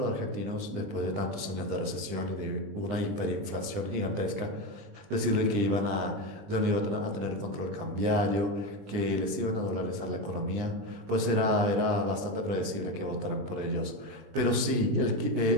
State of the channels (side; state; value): left; late; 20 ms